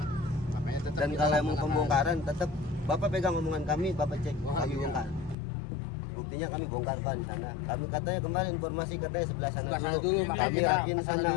Makanya tetap Dan kita kalau emang laksanakan. pembongkaran tetap Bapak pegang omongan kami, Bapak cek Wah, kami iya. bongkar. Buktinya kami bongkar Pak di sana. Kami katanya kemarin informasi katanya sebelah sana Sebelah sana dulu. dulu, makanya Kami kita rapiin kesana sana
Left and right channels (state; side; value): drops out; right; at 5.4 s